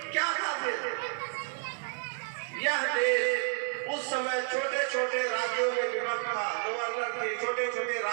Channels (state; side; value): silent; left; 57 dB below the other